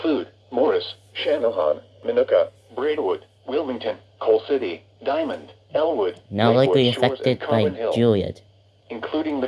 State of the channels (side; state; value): both; identical; correlation 1.00